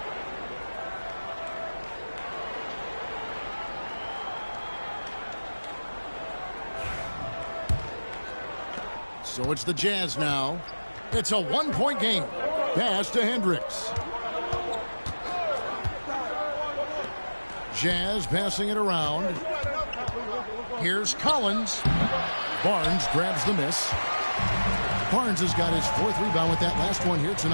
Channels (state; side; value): inverted; both; correlation -1.00